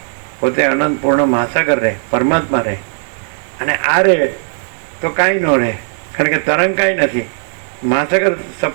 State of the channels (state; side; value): silent; left; digital silence